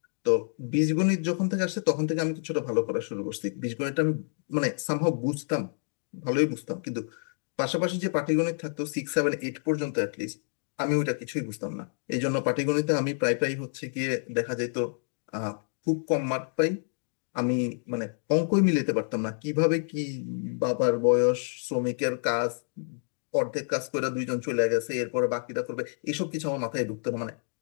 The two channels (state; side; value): silent; right; digital silence